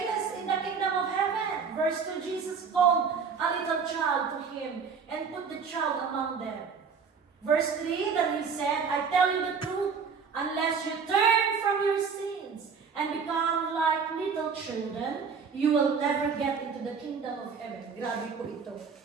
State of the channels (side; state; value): left; quieter; 5.8 dB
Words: Verse 2, Jesus called a little child to him and put the child among them. Verse 3, then he said, I tell you the truth, unless you turn from your sins and become like little children, you will never get into the kingdom of heaven. Grabe po ito.